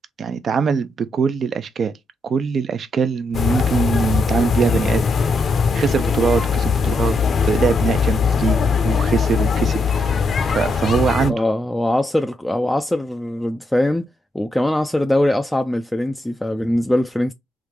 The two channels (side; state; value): both; normal; correlation 0.80